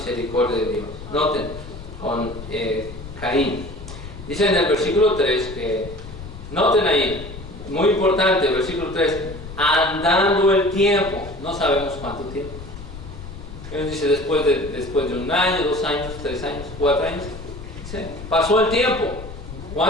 de Dios. Noten, Caín. Dice en el versículo 3 que, noten ahí, muy importante, versículo 3, andando el tiempo, no sabemos cuánto tiempo. Él dice después de 1 año, 2 años, 3 años, 4 años. Dice, pasó el tiempo.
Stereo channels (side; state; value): left; noise; rumble, 13 dB below the sound